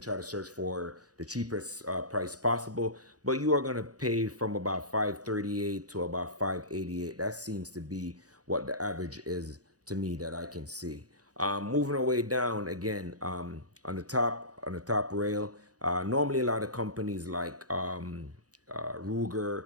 try to search for the cheapest price possible, but you are going to pay from about 538 to about 588. That seems to be what the average is to me that I can see. Moving our way down again, on the top rail. Normally, a lot of companies like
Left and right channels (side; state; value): left; late; 0.67 ms